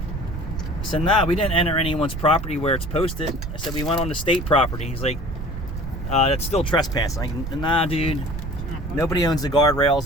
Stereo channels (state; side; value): noise; right; rumble, 7 dB below the sound